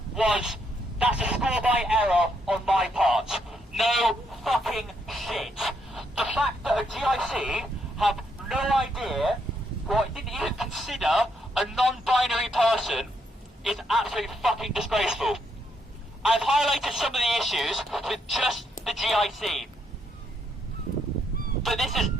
was, that's a score by error on my part. No fucking shit. The fact that a GIC have no idea, or didn't even consider a non-binary person, is absolutely fucking disgraceful. I've highlighted some of the issues with just the GIC. But this is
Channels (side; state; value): both; normal; correlation 0.75